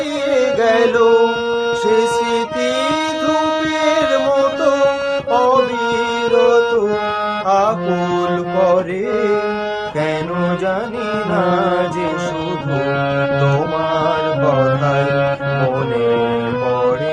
গেল। সে স্মৃতি ধূপের মতো অবিরত আকুল করে, কেন জানি না যে শুধু তোমার কথাই মনে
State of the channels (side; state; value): both; identical; correlation 1.00